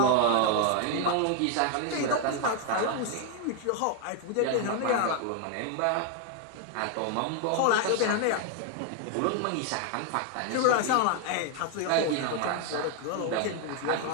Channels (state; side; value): different; both; correlation 0.01